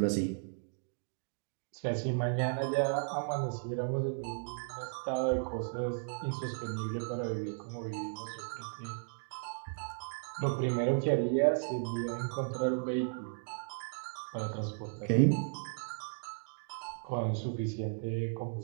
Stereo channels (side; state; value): left; silent; digital silence